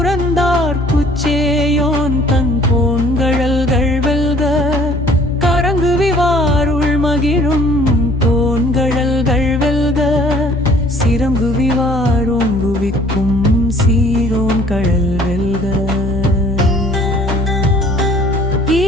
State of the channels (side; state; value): both; normal; correlation 0.55